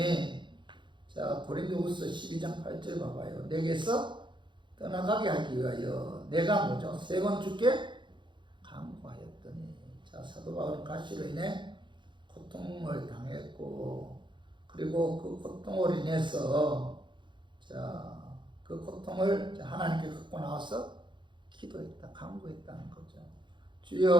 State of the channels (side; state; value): left; late; 0.23 ms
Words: 고린도후서 12장 8절 봐봐요. 내게서 떠나가게 하기 위하여 내가 뭐죠? 3번 주께 강구하였더니, 사도 바울은 가시로 인해 고통을 당했고, 그리고 그 고통으로 인해서 그 고통을 하나님께 갖고 나와서 기도했다, 강구했다는 거죠.